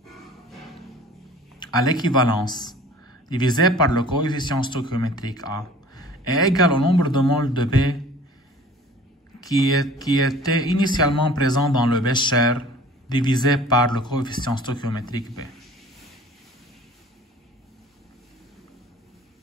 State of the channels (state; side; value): normal; both; correlation 0.47